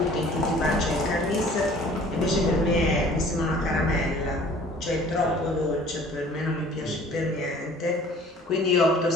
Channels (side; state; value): both; normal; correlation 0.51